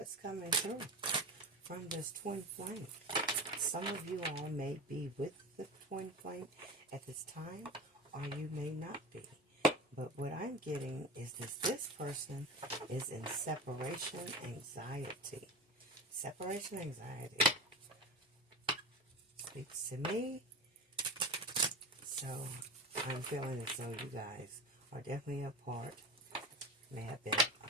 coming through from this twin flame. Some of you all may be with the twin flame at this time, or you may not be. But what I'm getting is this person is in separation anxiety. Separation anxiety speaks to me. So I'm feeling as though you guys are definitely apart. May have been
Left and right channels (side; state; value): both; normal; correlation 0.28